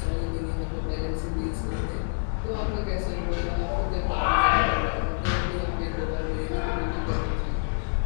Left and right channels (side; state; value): right; silent; digital silence